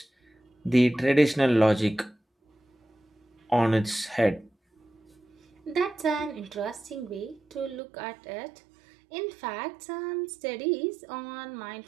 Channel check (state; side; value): drops out; left; at 7.8 s